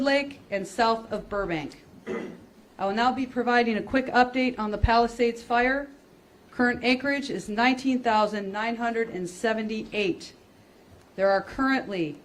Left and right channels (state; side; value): identical; both; correlation 1.00